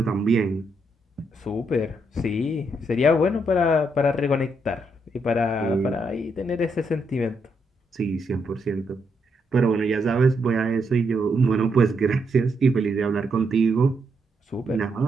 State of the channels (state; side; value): normal; both; correlation 0.78